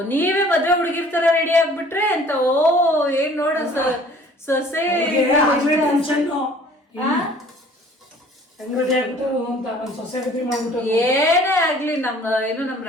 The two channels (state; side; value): normal; both; correlation 0.53